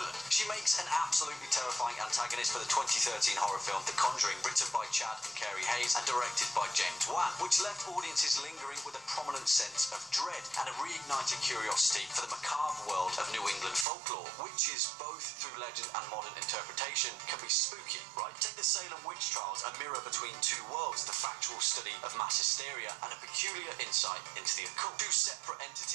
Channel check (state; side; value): drops out; left; at 13.9 s